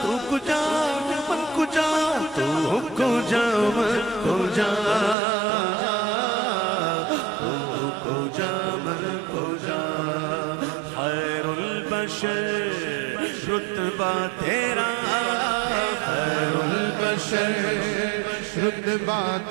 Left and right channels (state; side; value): drops out; left; at 5.2 s